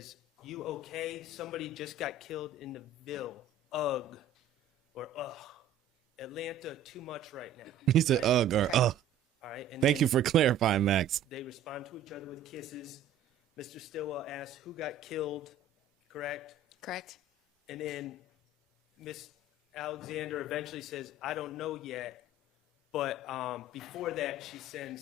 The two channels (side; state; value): left; quieter; 4.9 dB